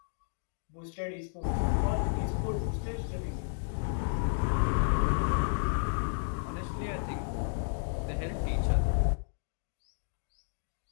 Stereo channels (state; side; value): silent; right; digital silence